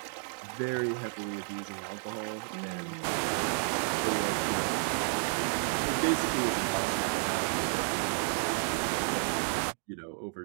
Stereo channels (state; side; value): silent; left; 57 dB below the other